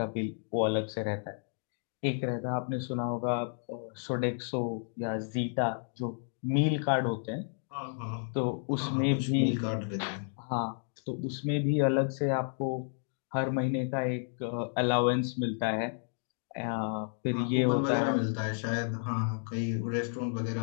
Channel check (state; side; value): silent; right; digital silence